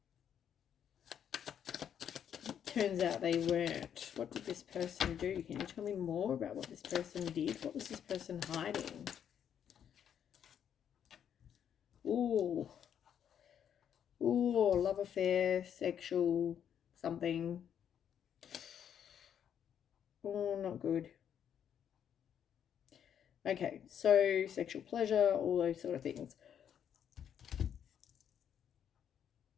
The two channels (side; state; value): right; quieter; 8.9 dB